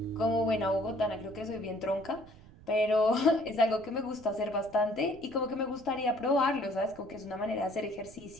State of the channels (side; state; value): right; noise; rumble, 22 dB below the sound